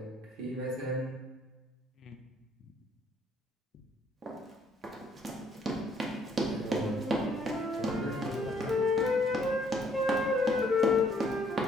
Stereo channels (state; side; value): normal; both; correlation 0.65